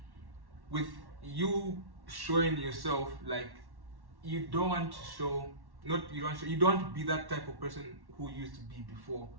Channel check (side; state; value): left; late; 1.1 ms